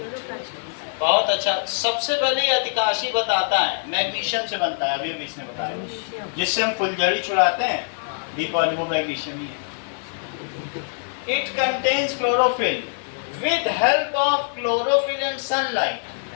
क्लोरोप्लास्ट। बहुत अच्छा। सबसे पहले ये अधिकाशी बताता है मैग्नीशियम से बनता है, अभी अभी इसने बताया, जिससे हम फुलझड़ी छुड़ाते हैं, बी पॉली वो मैग्नीशियम ही है। It contains chlorophyll. With help of chlorophyll and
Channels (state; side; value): silent; right; 56 dB below the other